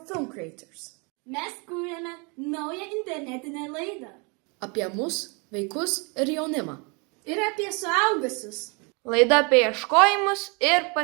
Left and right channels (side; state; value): left; quieter; 32.2 dB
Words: film creators. Mes kūrėme naują internetinę laidą. Apie mus, vaikus ir jaunimą. Ir apie suaugusius. Laida apie ieškojimus ir